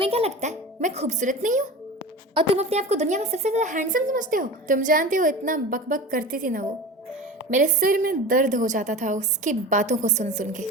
क्या लगता है मैं खूबसूरत नहीं हूँ? और तुम अपने आप को दुनिया में सबसे ज़्यादा हैंडसम समझते हो? तुम जानते हो इतना बकबक करती थी ना वो, मेरे सिर में दर्द हो जाता था उसकी बातों को सुन सुन के।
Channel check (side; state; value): both; normal; correlation 0.33